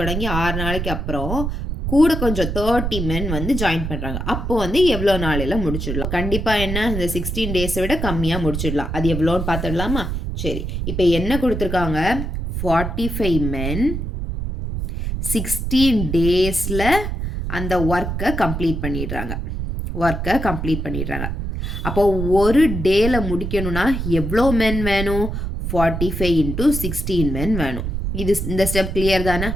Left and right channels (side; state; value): right; noise; rumble, 3 dB below the sound